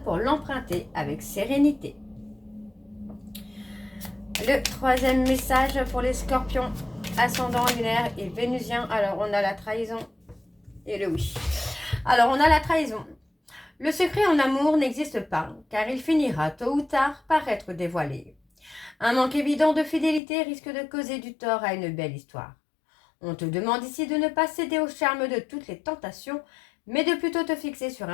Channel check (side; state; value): right; drops out; at 20.2 s